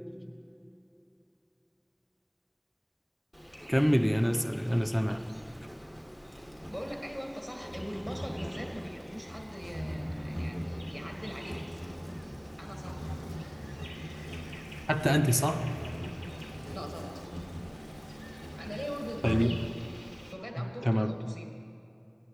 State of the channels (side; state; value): both; identical; correlation 1.00